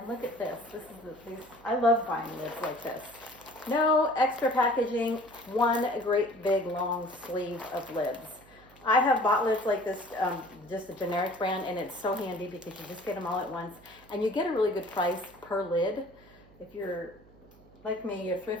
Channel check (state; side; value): noise; right; hum, 25 dB below the sound